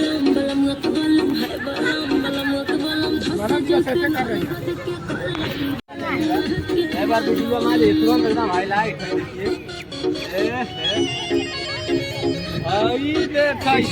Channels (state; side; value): identical; both; correlation 1.00